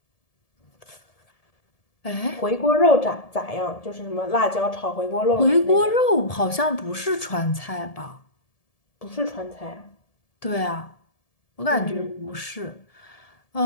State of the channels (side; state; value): right; late; 1.7 ms